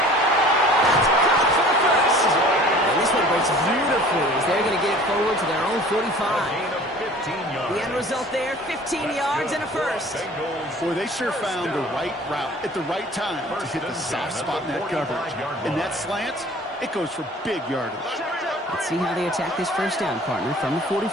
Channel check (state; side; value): normal; both; correlation 0.47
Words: Breaks beautifully as they're going to get it forward to their own 45. The end result there, 15 yards and a first. Boy, they sure found the right route at the right time to hit the soft spot in that coverage. And that slant, it goes for big yardage. Let's see how they attack this 1st down, partner, from the